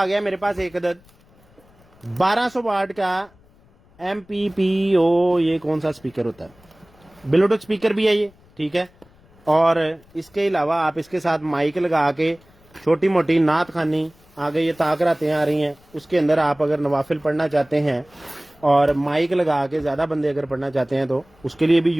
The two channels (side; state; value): left; noise; rumble, 29 dB below the sound